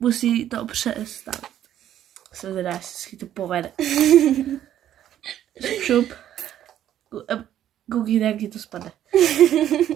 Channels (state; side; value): quieter; left; 11.3 dB